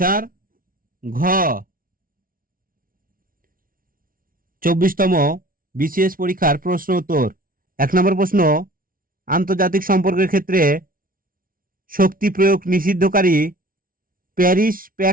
ঘ। 24তম বিসিএস পরীক্ষার প্রশ্ন উত্তর। 1 নম্বর প্রশ্ন, আন্তর্জাতিক সম্পর্কের ক্ষেত্রে শক্তি প্রয়োগ নিষিদ্ধকারী প্যারিস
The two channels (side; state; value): left; late; 0.42 ms